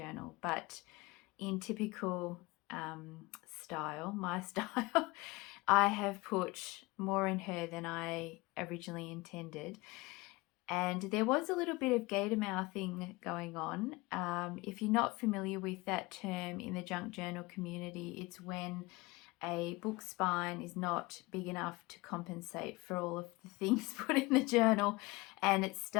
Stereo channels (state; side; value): quieter; right; 22.8 dB